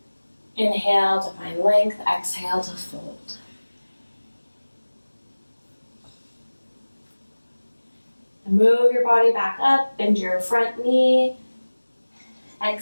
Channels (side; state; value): both; inverted; correlation -1.00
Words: Inhale to find length, exhale to fold. And move your body back up, bend your front knee.